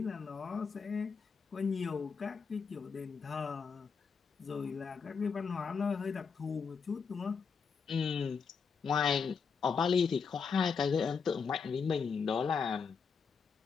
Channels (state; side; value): quieter; right; 5.7 dB